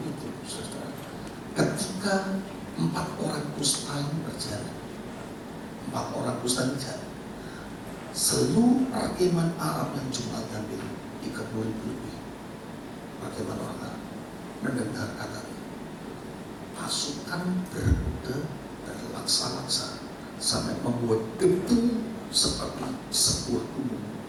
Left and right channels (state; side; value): identical; both; correlation 1.00